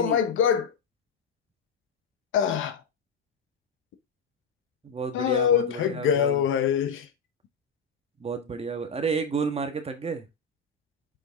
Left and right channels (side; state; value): right; quieter; 5.0 dB